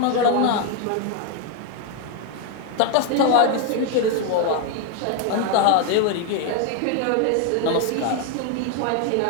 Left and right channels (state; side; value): different; both; correlation 0.01